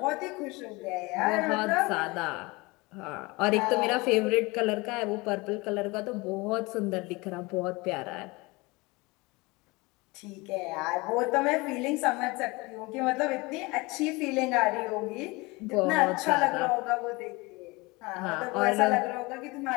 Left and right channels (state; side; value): quieter; right; 24.2 dB